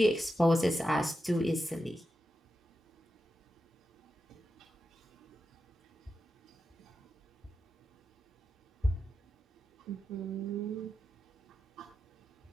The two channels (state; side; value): normal; both; correlation 0.89